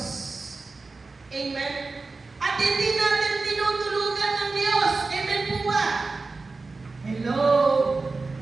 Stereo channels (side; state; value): left; quieter; 3.8 dB